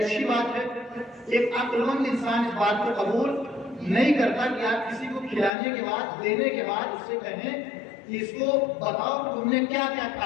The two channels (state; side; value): drops out; right; at 5.5 s